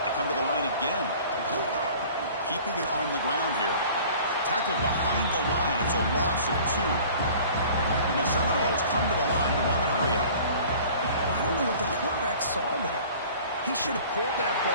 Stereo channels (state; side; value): inverted; both; correlation -0.47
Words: come to the line again. Keeping it on the ground here. Tackled behind the line. It's a loss of 2. And the Seminoles come to the line to run the hurry up. Well, I don't know what the quarterback saw there. He should have pulled that